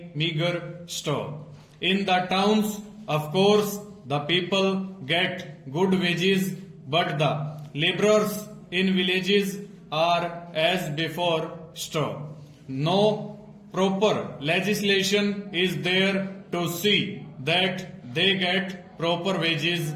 meager. Stop. In the towns, of course, the people get good wages, but the laborers in villages are as before. Stop. No proper legislation is there to see that they get proper wages.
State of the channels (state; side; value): identical; both; correlation 1.00